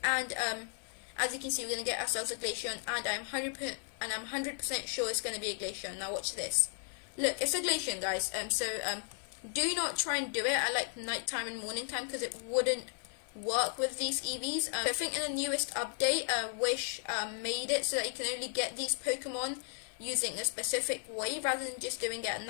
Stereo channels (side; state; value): right; silent; 55 dB below the other